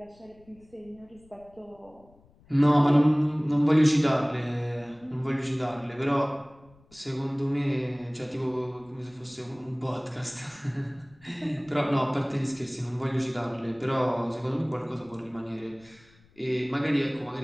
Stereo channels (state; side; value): noise; left; rumble, 28 dB below the sound